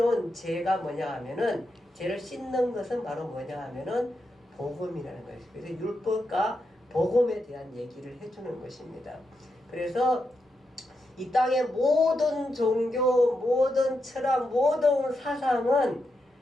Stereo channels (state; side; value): normal; both; correlation 0.85